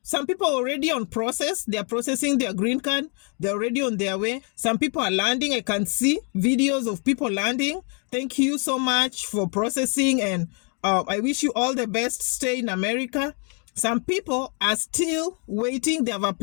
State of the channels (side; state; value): right; quieter; 39.0 dB